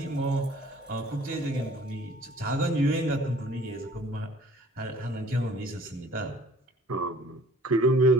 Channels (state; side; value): normal; both; correlation 0.53